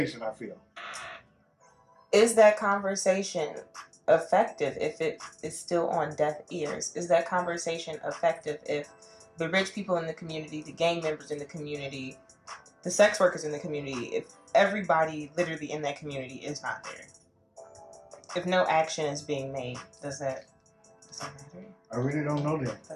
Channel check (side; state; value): both; identical; correlation 1.00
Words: I feel. Is that conversation effective if it is still on deaf ears? Is that conversation effective if the rich people in the community, the gang members in the community, the sex workers in the community, if everybody literally in that community is not there? If no action is being made, does that matter? I really don't know